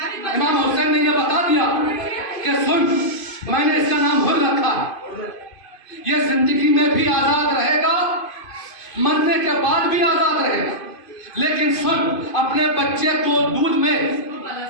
امام حسین نے یہ بتا دیا کہ سن میں نے اس کا نام حر رکھا, یہ زندگی میں بھی آزاد رہے گا, مرنے کے بعد بھی آزاد رہے گا. لیکن سن اپنے بچے کو دودھ میں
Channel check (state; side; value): late; right; 2.5 ms